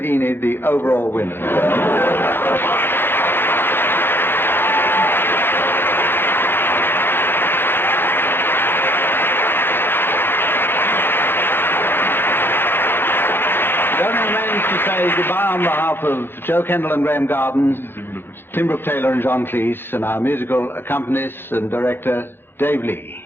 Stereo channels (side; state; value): right; late; 0.10 ms